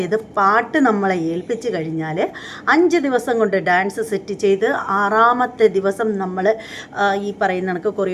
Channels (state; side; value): identical; both; correlation 1.00